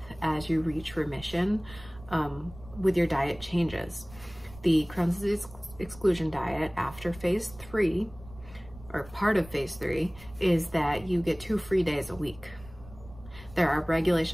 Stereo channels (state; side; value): noise; right; rumble, 19 dB below the sound